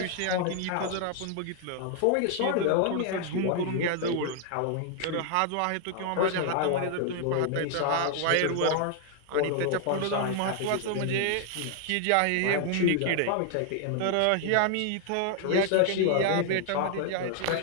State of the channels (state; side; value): different; both; correlation 0.00